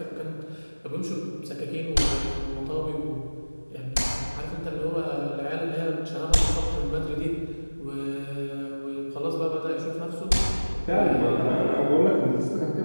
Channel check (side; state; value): both; inverted; correlation -1.00